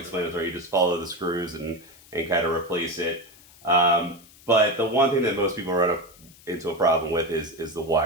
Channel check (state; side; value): noise; left; hiss, 24 dB below the sound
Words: You just follow the screws and kind of replace it. But the one thing that most people run up into a problem with is the